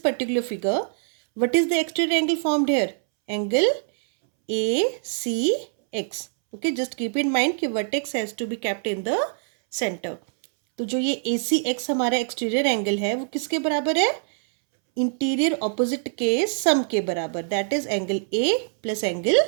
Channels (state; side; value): silent; left; 63 dB below the other